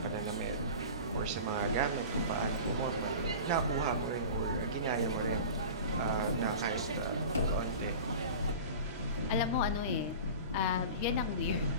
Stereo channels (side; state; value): both; inverted; correlation -0.35